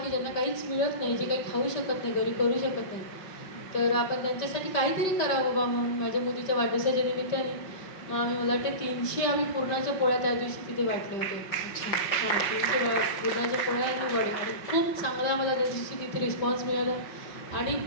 की ज्यांना काहीच मिळत नाही, जे काही खाऊ शकत नाही, घरी करू शकत नाही, तर आपण त्यांच्यासाठी काहीतरी करावं बाबा म्हणून माझ्या मुलीच्या वाढदिवसाच्या निमित्ताने आम्ही, मला वाटते 300 आम्ही पुरणाच्या पोळ्या त्या दिवशी तिथे वाटले होते. हां, 300 पुरणाच्या पोळ्या आणि वडे, आणि खूप चांगला मला त्या दिवशी तिथे रिस्पॉन्स मिळाला. आणि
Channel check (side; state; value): right; late; 5.2 ms